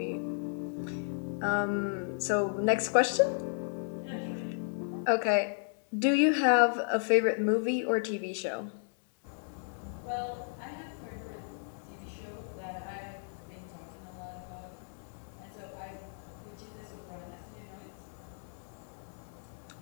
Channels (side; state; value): right; silent; digital silence